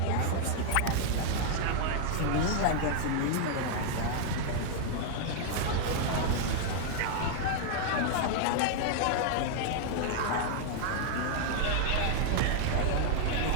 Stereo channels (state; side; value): different; both; correlation 0.00